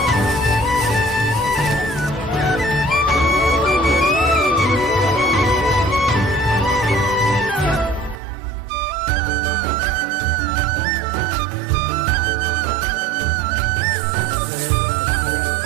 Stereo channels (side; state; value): left; drops out; at 8.2 s